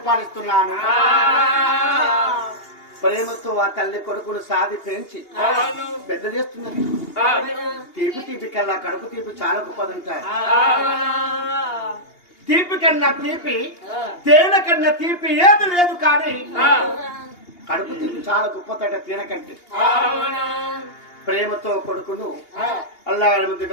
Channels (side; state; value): right; late; 2.8 ms